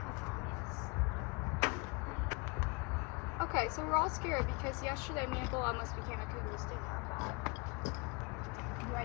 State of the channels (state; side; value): quieter; right; 29.5 dB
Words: Okay, so we're all scared because yesterday me and Bull almost became a cougar stinger. Do I